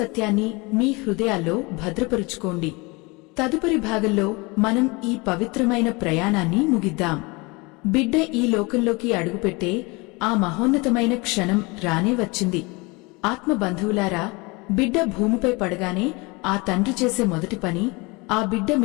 మీ హృదయాల్లో భద్రపరుచుకోండి. తదుపరి భాగంలో మనం ఈ పవిత్రమైన ప్రయాణాన్ని ముగిద్దాం. బిడ్డ ఈ లోకంలోకి అడుగుపెట్టే ఆ మహోన్నతమైన క్షణం రానే వచ్చింది. ఆత్మబంధువులారా, బిడ్డ భూమిపై పడగానే ఆ తండ్రి చేసే మొదటి పని ఆ బిడ్డ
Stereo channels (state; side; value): quieter; right; 26.3 dB